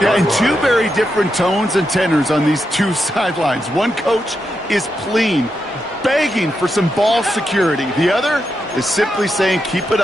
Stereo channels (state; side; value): normal; both; correlation 0.85